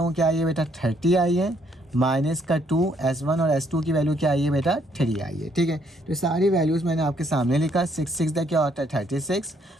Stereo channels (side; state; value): both; normal; correlation 0.69